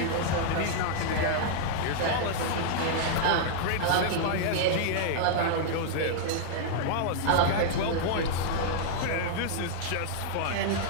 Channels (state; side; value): different; both; correlation -0.01